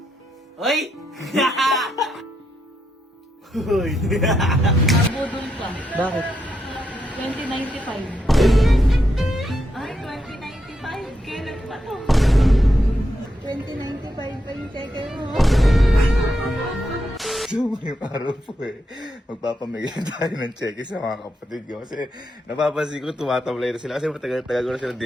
Hoy! Hoy! Nabudol ka. Bakit? 2095. Ay, 2095. Kailan pa to? 2095 pa yung cheque mo. So, ngayong araw po magpapamigay tayo ng cheque sa mga kapatid ko. Kasi napapansin ko tumatamlay na sila. Kasi matagal-tagal ko na sila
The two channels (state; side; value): normal; both; correlation 0.82